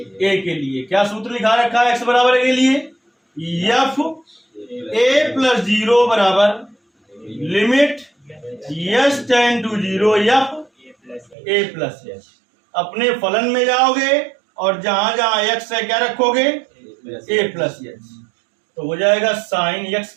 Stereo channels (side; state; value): left; drops out; at 11.4 s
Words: के लिए क्या सूत्र लिखा रखा है एक्स बराबर ए के लिए, एफ ए प्लस 0 बराबर limit s tend to 0 f a plus s. अपने फलन में जाओगे और जहां जहां एक्स है क्या रखोगे, ए प्लस यच, तो हो जाएगा साइन यक्स